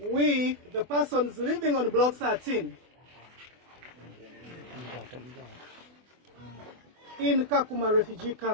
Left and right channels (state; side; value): late; left; 24 ms